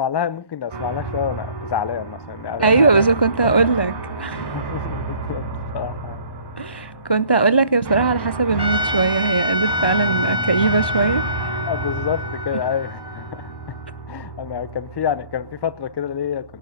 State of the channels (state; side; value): late; right; 1.1 ms